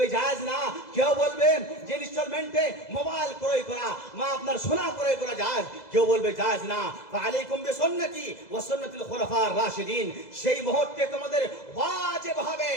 জায়েজ না, কেউ বলবে যে ইনস্টলমেন্টে মোবাইল ক্রয় করা বা আপনার সোনা ক্রয় করা জায়েজ, কেউ বলবে জায়েজ না। ফাআলাইকুম বিসুন্নতি ওয়া সুন্নাতিল খুলাফার রাশিদিন, সেই মুহূর্তে তোমাদের ওয়াজিব হবে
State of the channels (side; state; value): right; late; 2.0 ms